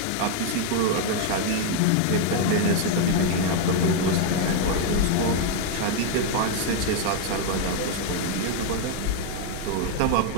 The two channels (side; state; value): both; different; correlation 0.00